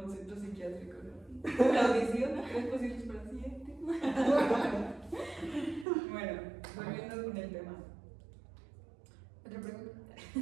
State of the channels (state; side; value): drops out; left; at 5.9 s